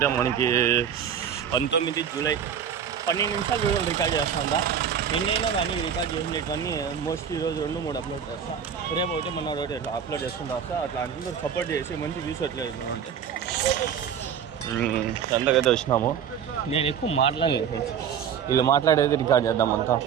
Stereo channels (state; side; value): quieter; left; 8.1 dB